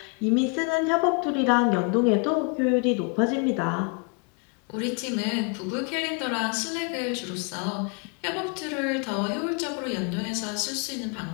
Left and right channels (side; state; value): right; quieter; 35.7 dB